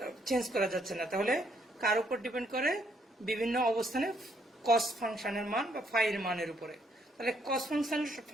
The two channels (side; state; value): both; normal; correlation 0.70